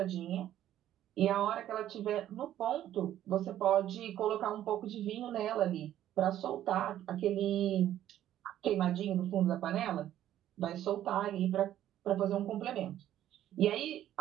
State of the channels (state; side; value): quieter; left; 12.1 dB